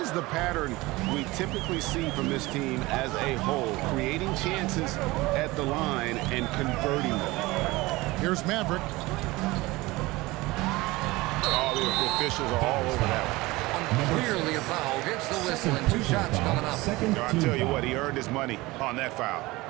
the pattern we typically see from this team as a whole, creating chances at the line and converting them. Here's Maverick. Oh, the officials are all over that one. Clearly a foul. Gets the whistle and 2 shots coming up. I tell you what, he earned his money on that foul.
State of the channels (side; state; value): left; quieter; 20.9 dB